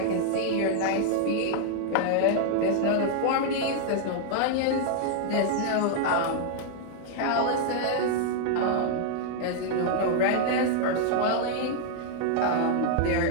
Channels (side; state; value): both; different; correlation -0.01